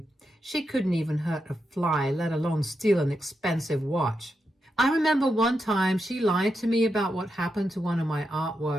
She couldn't even hurt a fly, let alone steal an expensive watch. I remember one time she lied to me about what happened to one of my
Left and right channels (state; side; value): normal; both; correlation 0.86